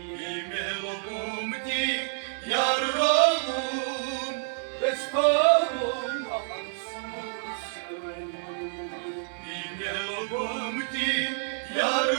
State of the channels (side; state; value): left; silent; 59 dB below the other